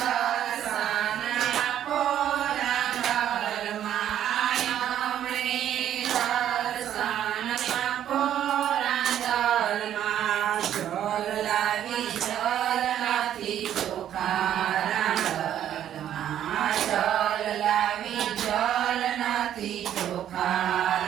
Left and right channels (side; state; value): left; quieter; 10.7 dB